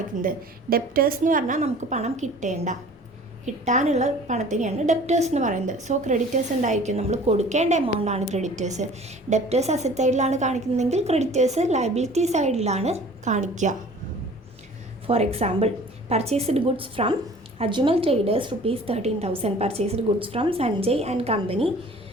ഡെപ്റ്റേഴ്സ് എന്ന് പറഞ്ഞാൽ നമുക്ക് പണം കിട്ടാനുള്ള പണത്തിനെയാണ് ഡെപ്റ്റേഴ്സ് എന്ന് പറയുന്നത്. സോ ക്രെഡിറ്റേഴ്സ് ഉണ്ടായിരിക്കും, നമ്മൾ കൊടുക്കേണ്ട എമൗണ്ട് ആണ് ക്രെഡിറ്റേഴ്സ്. ഡെപ്റ്റേഴ്സ് അസറ്റ് സൈഡിലാണ് കാണിക്കുന്നതെങ്കിൽ ക്രെഡിറ്റേഴ്സ് ലയബിലിറ്റി സൈഡിലാണ് കാണിക്കുക. For example purchased goods from Ajmal traders ₹13,000. Purchased goods from Sanjay and company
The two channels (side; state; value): both; normal; correlation 0.47